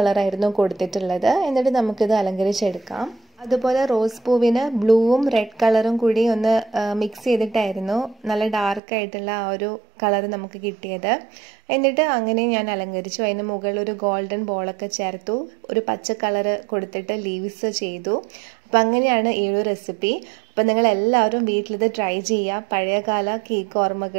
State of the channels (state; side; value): drops out; left; at 8.8 s